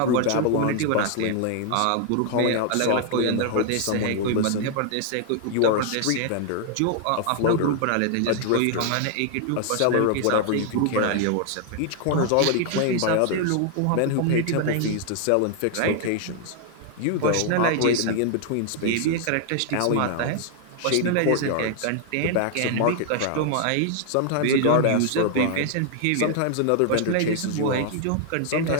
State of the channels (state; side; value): different; both; correlation 0.00